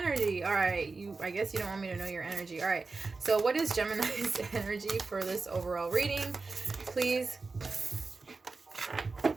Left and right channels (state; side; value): quieter; left; 4.0 dB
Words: All right, I guess you don't want me to know your energy. All right, so what is Gemini's energy for this overall reading, please?